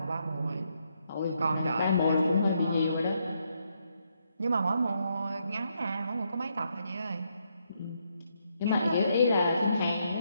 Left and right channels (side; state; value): both; inverted; correlation -0.77